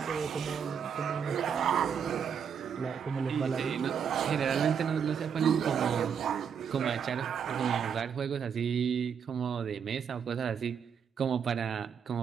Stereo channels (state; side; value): quieter; left; 7.3 dB